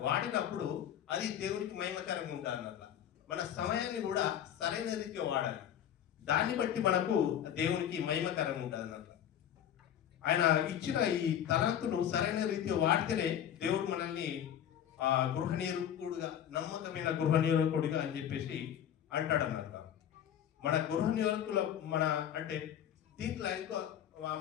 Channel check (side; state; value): right; quieter; 10.0 dB